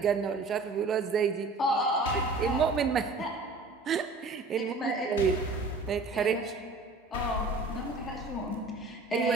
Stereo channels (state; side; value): quieter; left; 3.4 dB